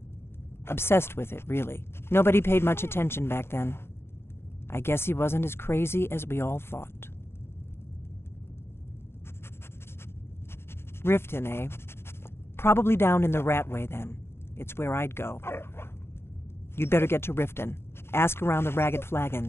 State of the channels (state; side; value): late; right; 0.12 ms